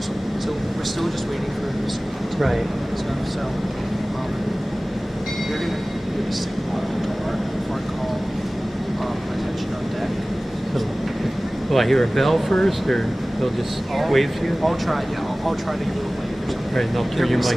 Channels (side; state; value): both; normal; correlation 0.98